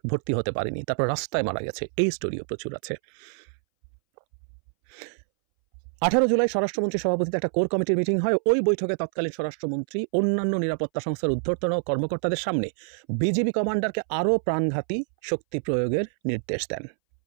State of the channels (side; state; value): left; silent; 61 dB below the other